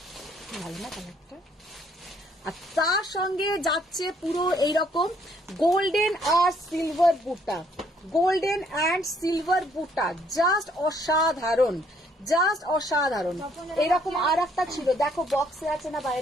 ভালো না কালারটা? আর তার সঙ্গে যাচ্ছে পুরো এইরকম golden R silver buta, golden and silver বুটা, জাস্ট অসাধারণ, জাস্ট অসাধারণ। এরকম আর একটা ছিল, দেখো বক্সে আছে না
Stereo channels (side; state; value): both; normal; correlation 0.66